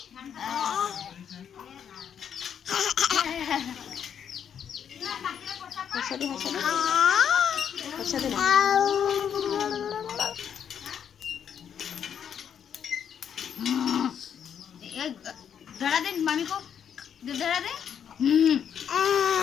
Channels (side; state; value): right; quieter; 8.3 dB